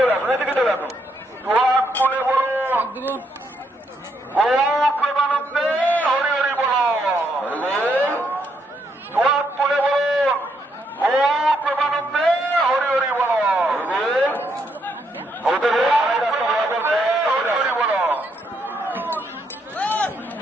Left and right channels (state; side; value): normal; both; correlation 0.76